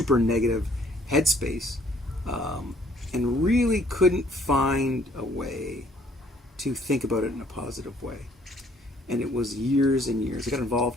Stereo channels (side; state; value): both; normal; correlation 0.61